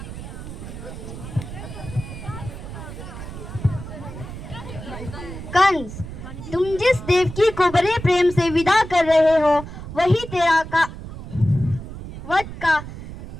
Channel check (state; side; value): noise; right; rumble, 11 dB below the sound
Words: कंस, तुम जिस देवकी को बड़े प्रेम से विदा कर रहे हो वही